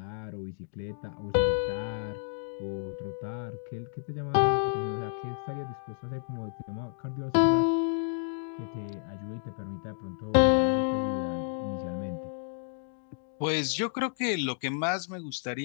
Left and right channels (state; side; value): silent; right; 57 dB below the other